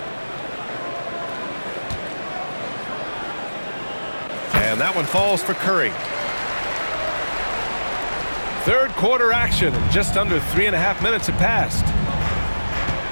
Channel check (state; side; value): inverted; both; correlation -1.00